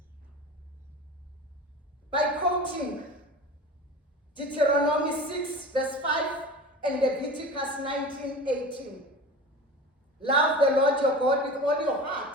by quoting Deuteronomy 6 verse 5 and Leviticus 19:18. Love the Lord your God with all your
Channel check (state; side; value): normal; both; correlation 0.34